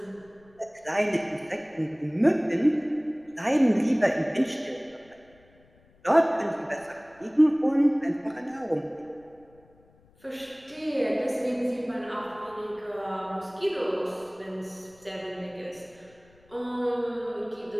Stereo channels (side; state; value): left; noise; rumble, 30 dB below the sound